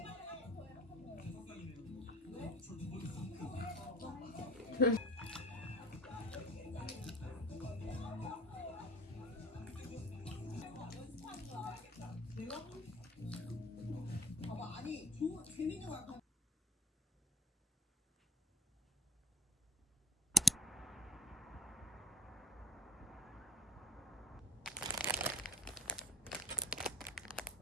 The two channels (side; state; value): both; normal; correlation 0.48